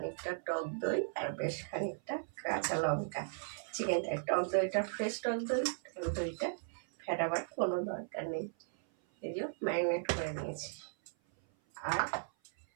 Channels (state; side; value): silent; left; 53 dB below the other